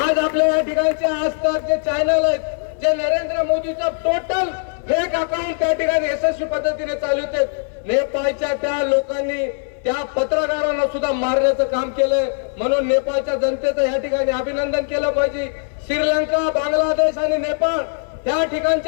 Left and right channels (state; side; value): silent; right; 61 dB below the other